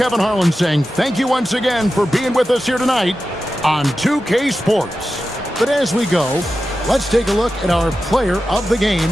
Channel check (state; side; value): normal; both; correlation 0.92